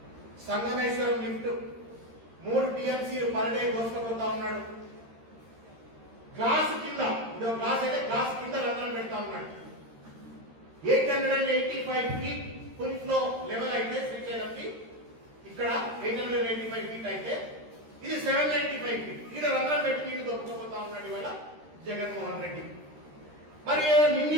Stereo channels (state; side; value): late; left; 13 ms